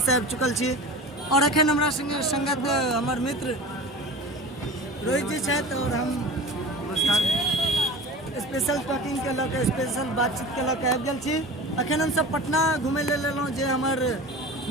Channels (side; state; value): both; normal; correlation 0.35